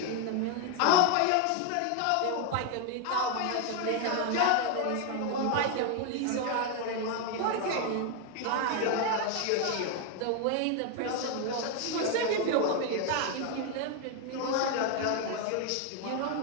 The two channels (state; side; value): different; both; correlation 0.01